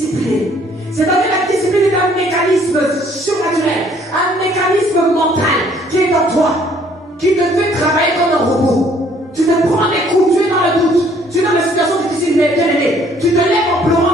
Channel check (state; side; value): normal; both; correlation 0.61